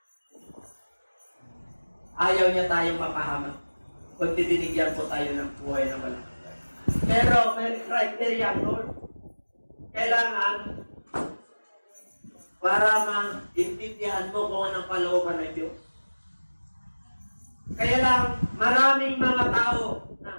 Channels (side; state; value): both; inverted; correlation -1.00